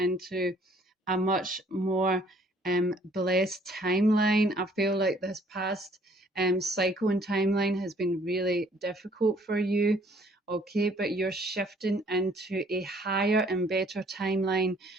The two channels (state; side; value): normal; both; correlation 0.60